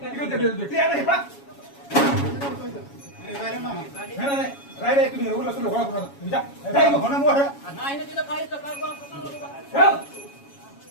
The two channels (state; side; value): late; right; 7.2 ms